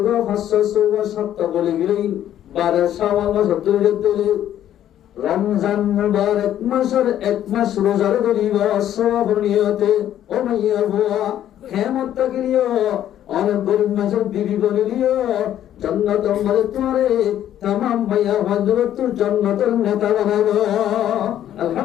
567 বলে গেলেন 12 শাওয়াল মাস ধরে দিলে রমজান মুবারক মাসের এক মাস রোজা ধরিবা সওয়াব নিয়তে ও মাইয়া হুয়া কিয়ামত তাকিরিও অনেক গরিব মাসের বিবি বলিও জান্নাত আমারে তোমারে तमाम মাইয়া হযরত জান্নাতের নেতা বানাবো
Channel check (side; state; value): right; quieter; 11.3 dB